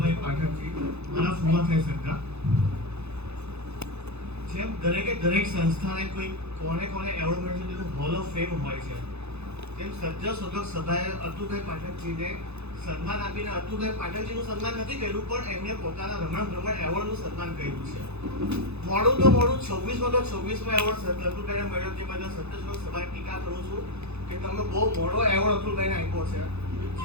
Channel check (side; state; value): left; late; 0.80 ms